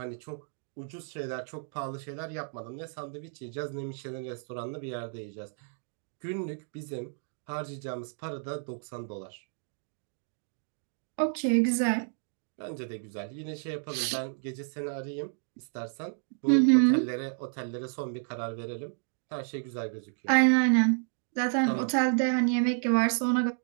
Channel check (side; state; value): left; silent; 57 dB below the other